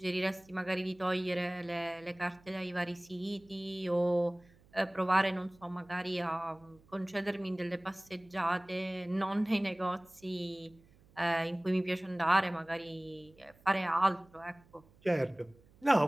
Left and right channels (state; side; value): noise; right; hum, 28 dB below the sound